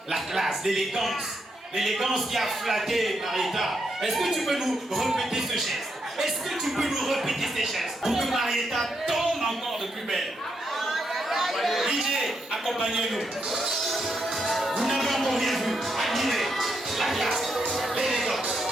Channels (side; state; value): both; normal; correlation 0.80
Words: La classe, l'élégance qui a flatté Marietta. Est-ce que tu peux nous répéter ce geste? Est-ce que tu peux nous répéter ces gestes pour que Marietta tombe encore de plus belle? DJ, accompagnez-nous. Vous n'avez encore rien vu. Admirez la classe, l'élégance.